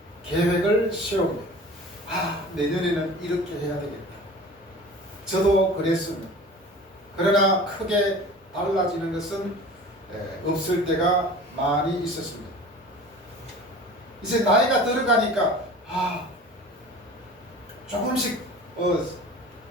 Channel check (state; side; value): normal; both; correlation 0.40